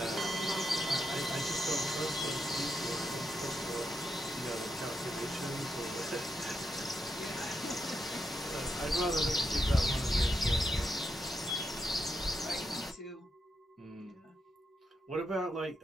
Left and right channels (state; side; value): normal; both; correlation 0.83